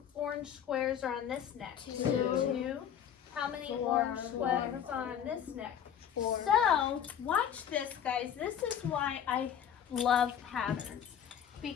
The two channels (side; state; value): right; quieter; 9.1 dB